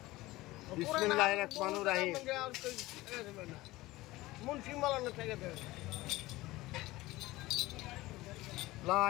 বিসমিল্লাহির রহমানির রহিম। মুন্সি মালানা থেকে দে। লা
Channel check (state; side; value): quieter; right; 18.8 dB